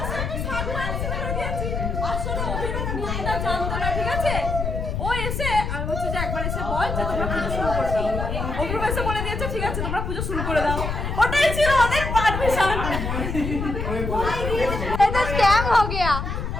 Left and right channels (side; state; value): left; noise; rumble, 3 dB below the sound